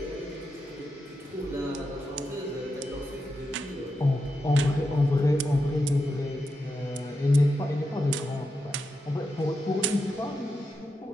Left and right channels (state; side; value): normal; both; correlation 0.87